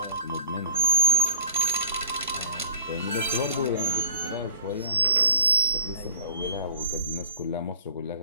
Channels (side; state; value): both; inverted; correlation -0.41